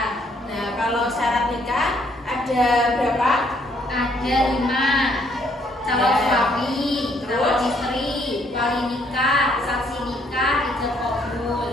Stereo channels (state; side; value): normal; both; correlation 0.67